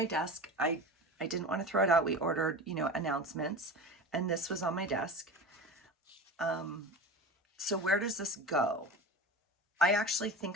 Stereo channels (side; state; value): both; normal; correlation 0.30